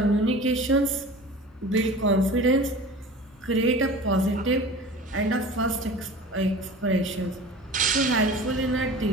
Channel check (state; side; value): normal; both; correlation 0.38